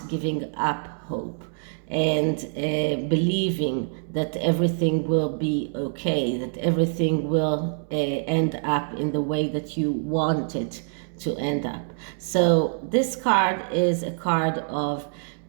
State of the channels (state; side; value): silent; left; digital silence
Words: giving up hope and believing that everything will be okay, that everything will end up in the way that you want it to end up. So this card is a card of